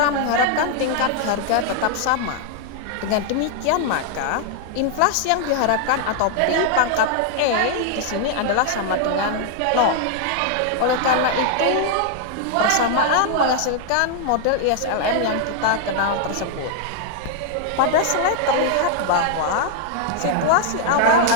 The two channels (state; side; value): different; both; correlation 0.00